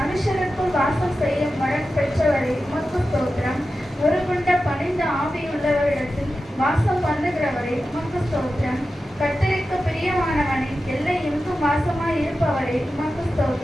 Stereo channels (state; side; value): normal; both; correlation 0.92